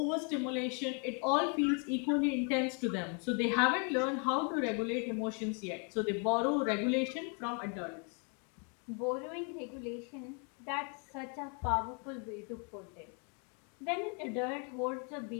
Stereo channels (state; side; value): quieter; right; 37.7 dB